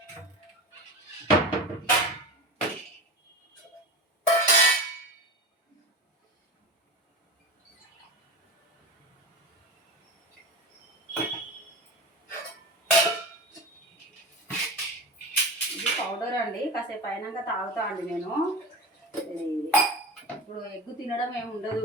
పౌడర్ అండి, కాసేపు అయినాక తాగుతా అండి నేను. ఇది ఇప్పుడు ఎగ్గు తినడం ఏమి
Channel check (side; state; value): both; normal; correlation 0.26